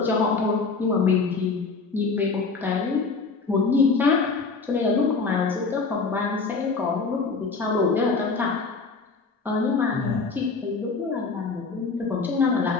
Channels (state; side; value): quieter; right; 4.4 dB